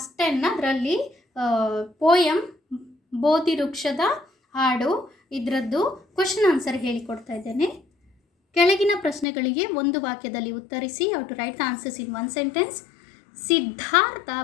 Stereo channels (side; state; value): right; drops out; at 9.2 s